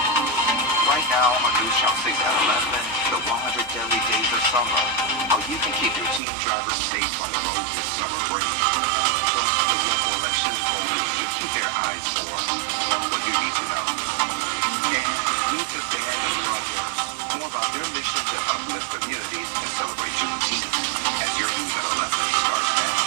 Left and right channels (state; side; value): drops out; left; at 6.2 s